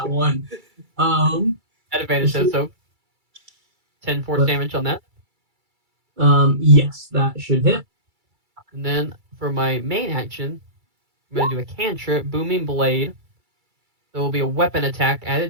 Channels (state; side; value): late; left; 2.3 ms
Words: one. at advantage, so 10 force damage on that. Yes, that should hit. And then for my main action, I'm going to do a cantrip, Booming Blade. So it will be a weapon attack at